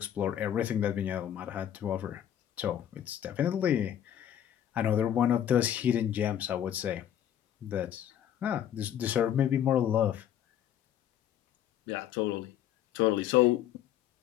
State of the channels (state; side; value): quieter; right; 10.5 dB